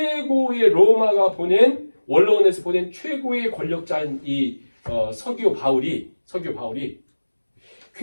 로마가 보낸 원로원에서 보낸 최고의 권력자인 이 서기오 바울이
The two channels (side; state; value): both; inverted; correlation -1.00